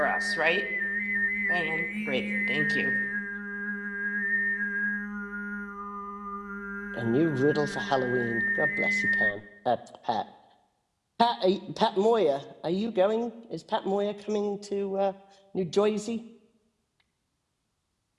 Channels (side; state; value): both; identical; correlation 1.00